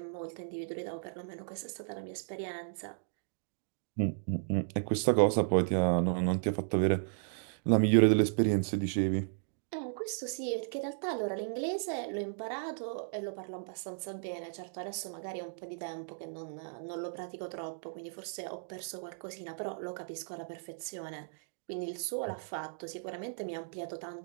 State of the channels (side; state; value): left; silent; digital silence